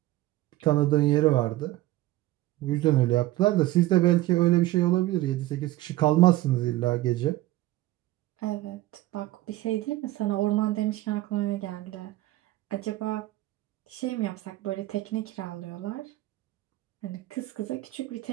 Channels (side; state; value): left; quieter; 16.5 dB